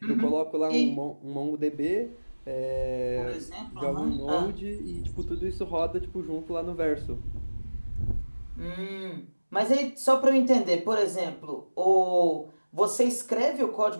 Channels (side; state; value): both; inverted; correlation -1.00